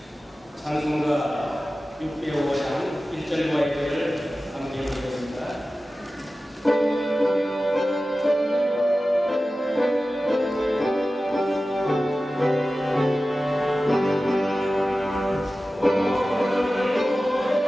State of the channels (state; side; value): normal; both; correlation 0.95